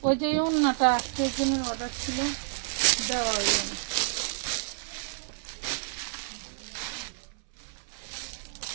ওই যে ওড়নাটা আজকের জন্য অর্ডার ছিল দেওয়া হইল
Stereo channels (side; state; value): left; silent; 58 dB below the other